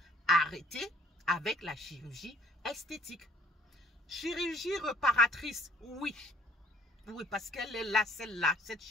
Arrêtez avec la chirurgie esthétique. Chirurgie réparatrice, oui. Oui, parce qu'elle est là, celle-là, cette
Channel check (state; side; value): normal; both; correlation 0.57